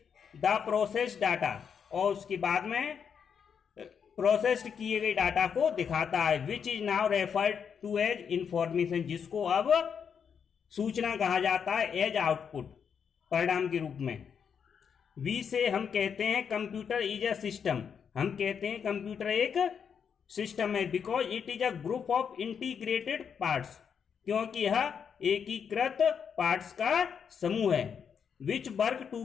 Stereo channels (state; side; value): quieter; right; 7.1 dB